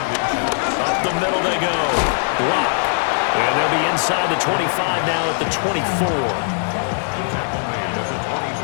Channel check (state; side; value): silent; right; digital silence